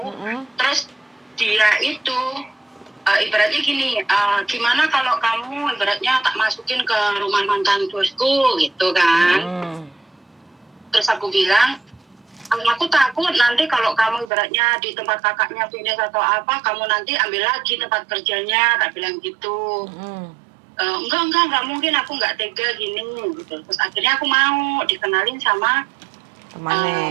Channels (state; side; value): drops out; left; at 14.3 s